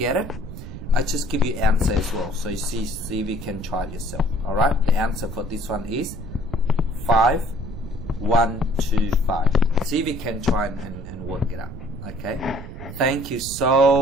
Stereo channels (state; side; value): noise; right; rumble, 11 dB below the sound